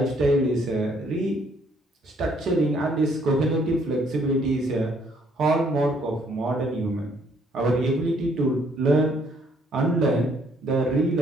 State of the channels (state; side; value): normal; both; correlation 0.66